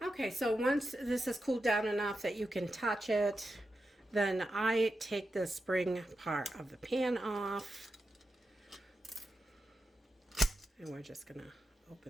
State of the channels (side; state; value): both; normal; correlation 0.89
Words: so once this is cooled down enough that you can touch it, then I take the spring part of the pan off, and we're just gonna